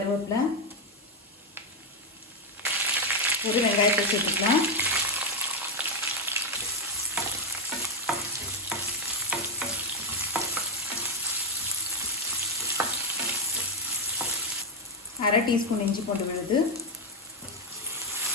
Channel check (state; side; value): normal; both; correlation 0.06